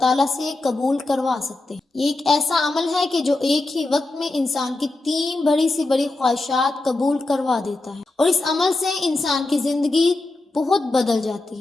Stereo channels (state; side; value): quieter; right; 3.0 dB